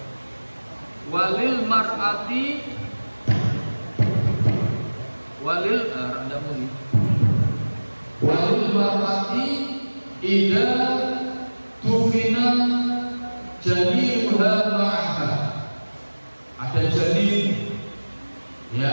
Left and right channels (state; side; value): inverted; both; correlation -1.00